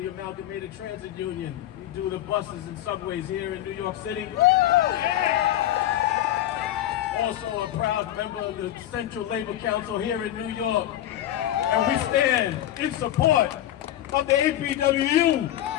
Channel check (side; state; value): right; quieter; 12.8 dB